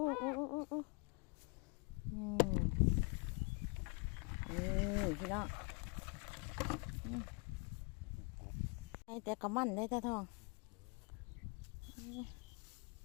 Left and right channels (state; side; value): quieter; right; 33.0 dB